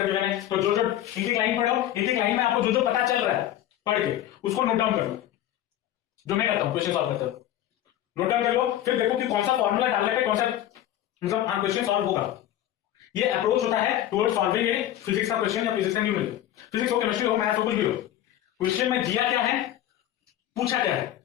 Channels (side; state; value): right; quieter; 12.4 dB